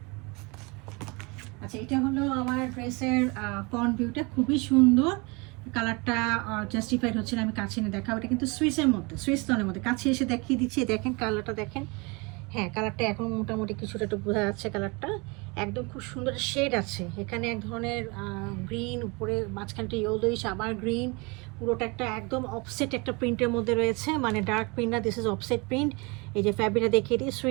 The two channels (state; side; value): quieter; left; 28.2 dB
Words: আচ্ছা, এটা হলো আমার ড্রেসের ফ্রন্ট ভিউটা, খুবই সুন্দর। কালারটা জাস্টিফাইড হচ্ছে না, আমি কাছে এনে দেখাবো। এটা কিন্তু সুইসের মধ্যে, সুইস টোনের মধ্যে। কাছে এসে দেখিয়ে দিচ্ছি, দেখেন কালারটা দেখেন। হ্যাঁ, কালারটা এখন মোটামুটি কিছুটা একটু বোঝা যাচ্ছে। কালারটা একদম খুব সুন্দর শেড আছে এখানে, এক ধরনের গ্রিন, উপরে মাঝখানটা ইয়েলোইশ, আবার গ্রিন। পুরোটা একটা একদম অফসেট একটা প্রিন্টের মধ্যে রয়েছে, মানে ডার্ক প্রিন্ট না, দিস ইজ অফসেট প্রিন্ট। এই যে ফ্যাব্রিকটা দেখিয়ে দিই,